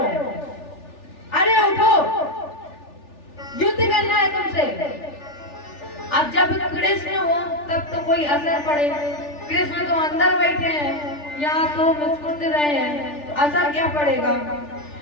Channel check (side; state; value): right; late; 3.4 ms